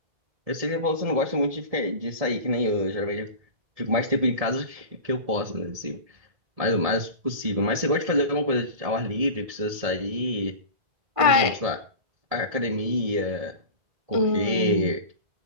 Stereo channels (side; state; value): left; late; 1.6 ms